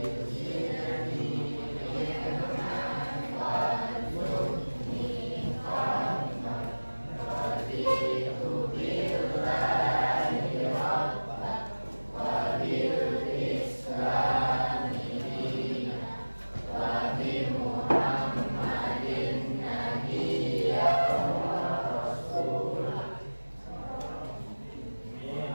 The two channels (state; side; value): inverted; both; correlation -1.00